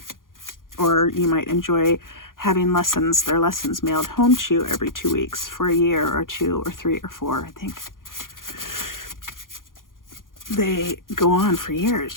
Or you might enjoy having their lessons mailed home to you every 2 weeks for a year or 2 or 3 or 4. I think they go on for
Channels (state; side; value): late; right; 0.90 ms